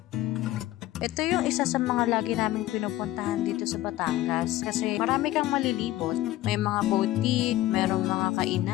Ito yung isa sa mga lagi naming pinupuntahan dito sa Batangas kasi marami kang malilibot. May mga boutique, merong mga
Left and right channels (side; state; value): right; quieter; 15.5 dB